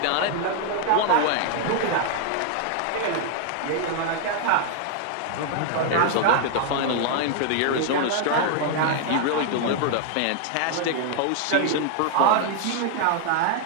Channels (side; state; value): both; different; correlation 0.00